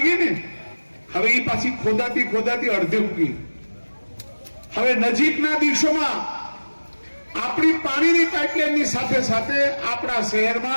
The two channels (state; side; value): inverted; both; correlation -1.00